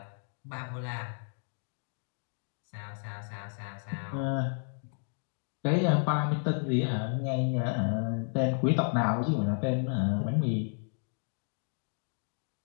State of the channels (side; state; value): right; silent; 56 dB below the other